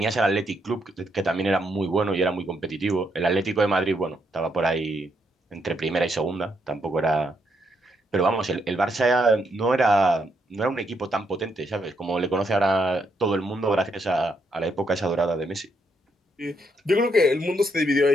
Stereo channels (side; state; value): both; normal; correlation 0.77